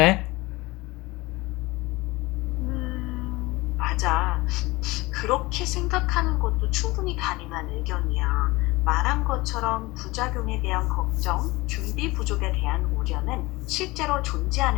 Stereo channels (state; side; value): quieter; right; 21.7 dB